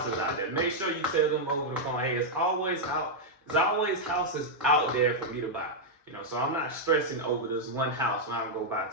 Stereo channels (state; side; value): normal; both; correlation -0.04